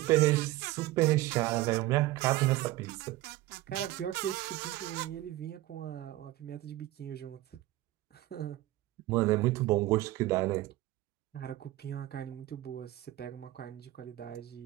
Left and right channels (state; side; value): quieter; left; 16.9 dB